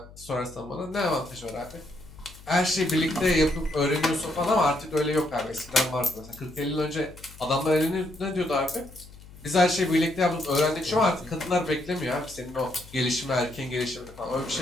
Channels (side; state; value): left; noise; hum, 20 dB below the sound